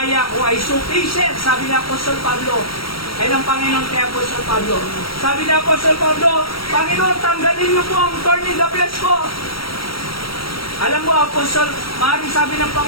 ko ay sufficient, sabi ni Apostol Pablo. Ay ng Panginoon kay Apostol Pablo. Sabi ni Apostol Pablo, Panginoon, tanggalin niyo po ang thorn in the flesh ko. Alam mo, Apostol, maaaring sabi ng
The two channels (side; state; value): right; late; 0.75 ms